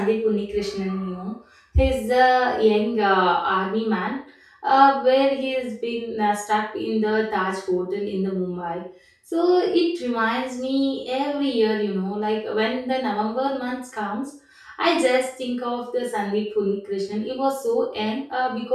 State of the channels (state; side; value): identical; both; correlation 1.00